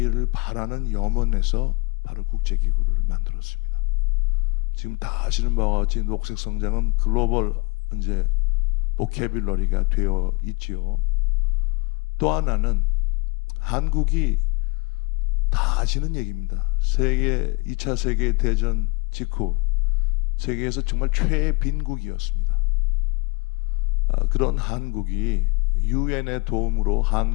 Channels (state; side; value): quieter; right; 29.3 dB